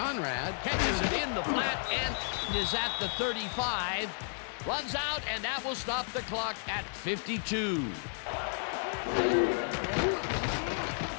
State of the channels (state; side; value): silent; right; digital silence